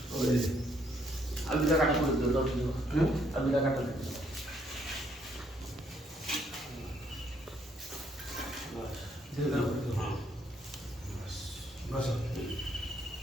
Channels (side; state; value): both; normal; correlation 0.70